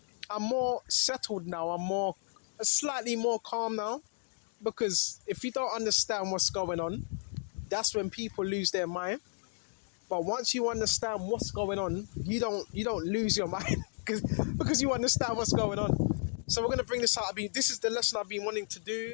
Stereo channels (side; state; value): right; silent; 56 dB below the other